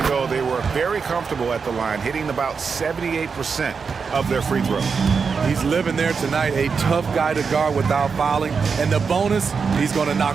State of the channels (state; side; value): quieter; left; 5.5 dB